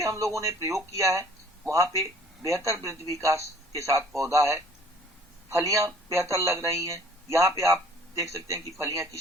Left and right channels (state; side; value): normal; both; correlation 0.53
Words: हम लोगों ने प्रयोग किया है वहां पे बेहतर वृद्धि विकास के साथ पौधा है, फलियां बेहतर लग रही हैं। यहाँ पे आप देख सकते हैं कि फलियां